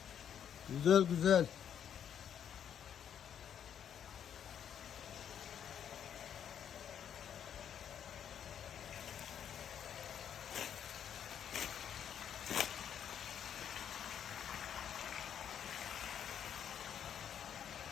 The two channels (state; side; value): quieter; right; 8.9 dB